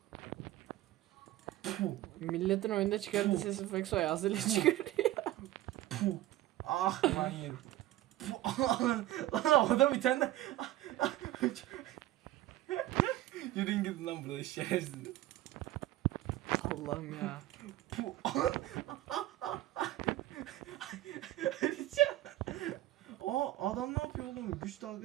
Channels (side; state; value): left; quieter; 15.4 dB